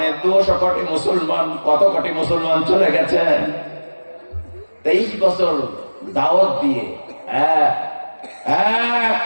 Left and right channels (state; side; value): inverted; both; correlation -1.00